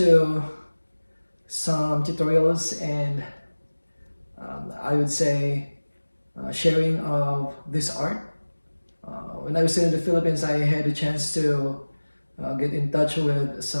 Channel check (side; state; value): both; inverted; correlation -1.00